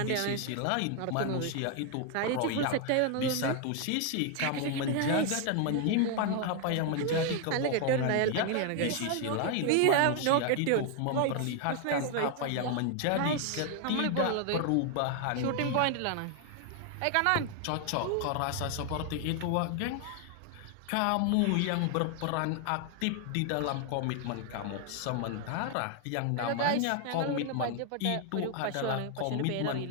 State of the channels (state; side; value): different; both; correlation 0.00